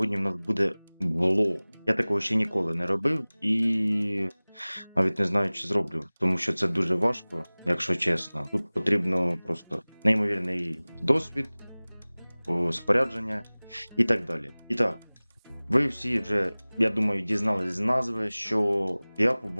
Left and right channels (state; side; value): inverted; both; correlation -1.00